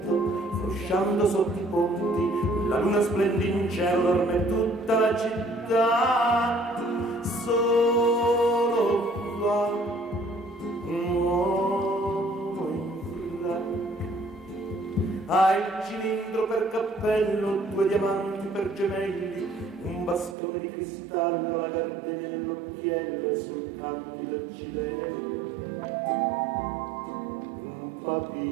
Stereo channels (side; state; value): left; drops out; at 20.4 s